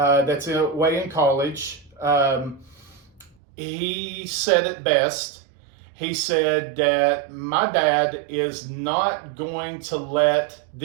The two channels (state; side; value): drops out; left; at 3.4 s